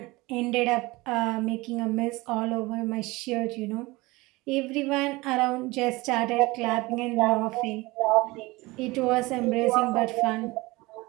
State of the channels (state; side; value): quieter; left; 21.9 dB